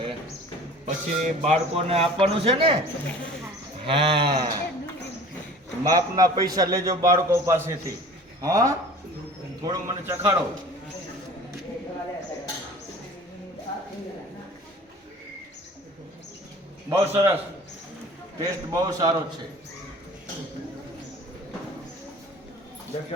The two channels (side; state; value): both; normal; correlation 0.44